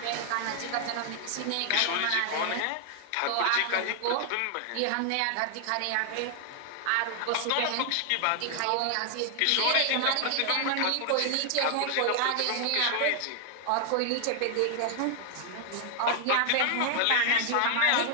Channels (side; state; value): both; different; correlation 0.00